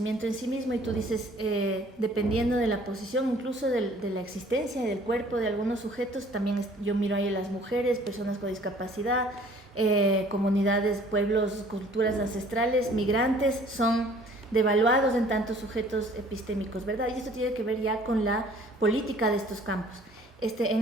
en sí mismo y tú dices, dependiendo de la posición, incluso de la existencia del cuerpo de algunos sujetos, también yo miro ahí a las mujeres, personas con discapacidad, comunidades, pueblos, culturas ancestrales, migrantes, son devaluados en tantos sujetos epistémicos, ¿verdad? Y esto tiene que ver ya con la política de estos campos.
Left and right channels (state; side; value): normal; both; correlation 0.54